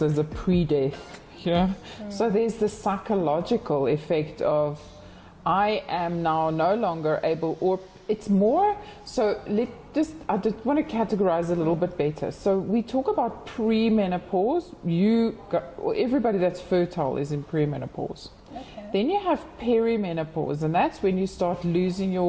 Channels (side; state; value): both; identical; correlation 1.00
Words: as a pre-death. You know? So there's the psychological effect of I am now no longer able, or it's more, so I just want to categorize a little bit better. So we talk about premenopause. Everybody that's fertile is in premenopause. Okay. Then you have perimenopause, and that's when you start losing